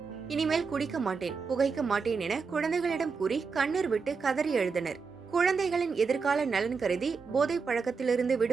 இனிமேல் குடிக்க மாட்டேன், புகைக்க மாட்டேன் என குழந்தைகளிடம் கூறி கண்ணீர் விட்டு கதறி எழுதினர். குழந்தைகளின் எதிர்கால நலன் கருதி போதை பழக்கத்திலிருந்து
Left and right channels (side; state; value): left; quieter; 5.1 dB